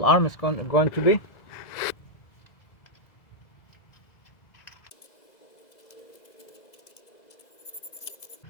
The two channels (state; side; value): late; right; 2.0 ms